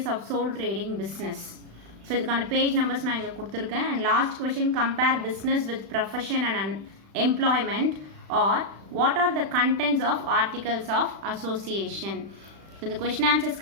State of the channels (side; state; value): left; late; 36 ms